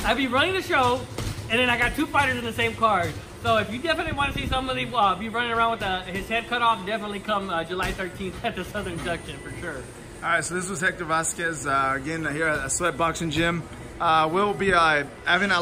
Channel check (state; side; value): identical; both; correlation 1.00